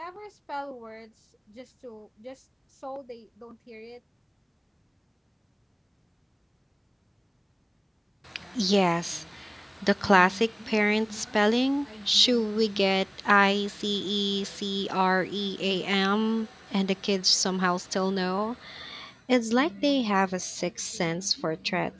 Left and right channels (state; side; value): identical; both; correlation 1.00